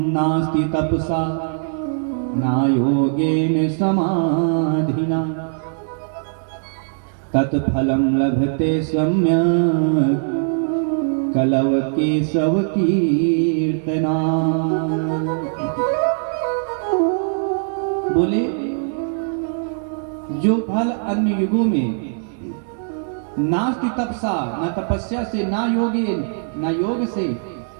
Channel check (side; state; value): left; silent; digital silence